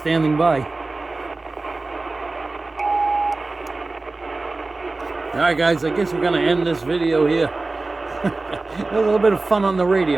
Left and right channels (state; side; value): quieter; left; 3.4 dB